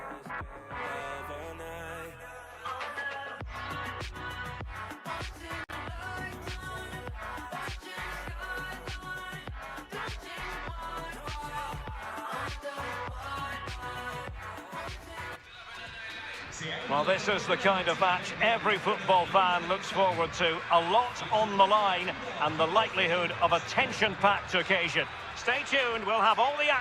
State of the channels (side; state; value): both; identical; correlation 1.00